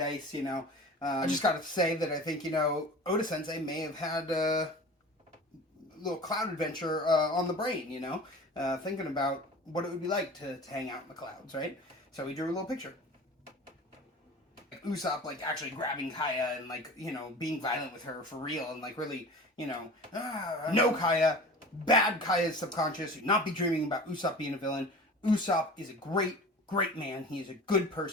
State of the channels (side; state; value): both; normal; correlation 0.38